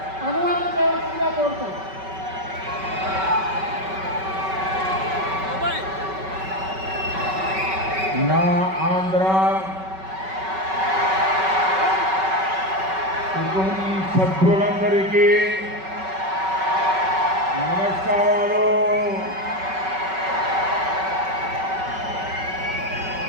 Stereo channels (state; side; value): late; left; 5.3 ms